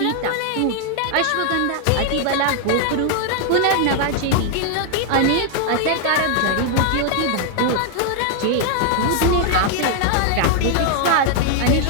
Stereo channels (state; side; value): different; both; correlation 0.00